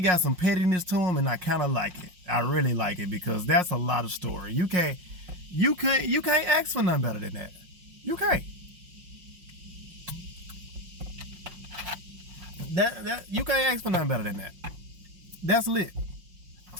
got some pettiness to him, and I kind of like it. I really like it because that's a lot of story. You can't ask for nothing better than that. You can't. You can't ask for nothing better than that. That's lit.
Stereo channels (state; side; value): late; left; 5.5 ms